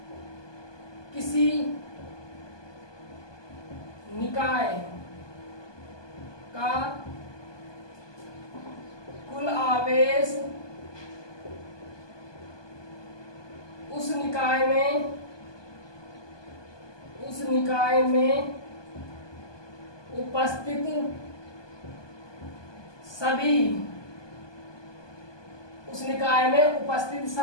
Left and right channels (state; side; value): late; right; 1.2 ms